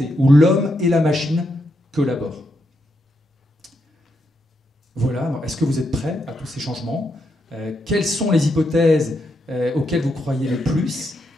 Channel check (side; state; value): both; normal; correlation 0.81